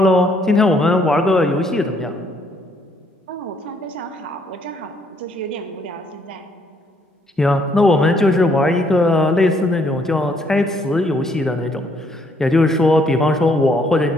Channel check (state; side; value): normal; both; correlation 0.68